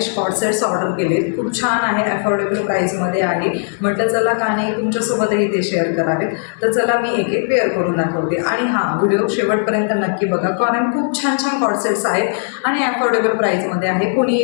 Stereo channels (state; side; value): silent; right; digital silence